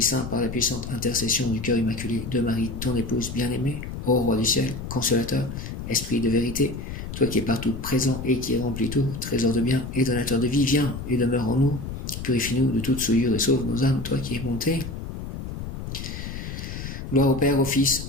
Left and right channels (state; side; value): noise; left; rumble, 8 dB below the sound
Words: Saint par la puissante intercession du cœur immaculé de Marie, ton épouse bien-aimée, ô Roi du ciel, consolateur, Esprit de vérité, toi qui es partout présent et qui remplis tout, trésor de bien et donateur de vie, viens et demeure en nous, purifie-nous de toute souillure et sauve nos âmes, toi qui es bonté. Gloire au Père, au Fils,